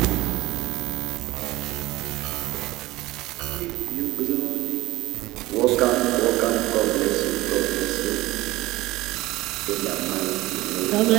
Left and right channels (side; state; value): left; quieter; 18.5 dB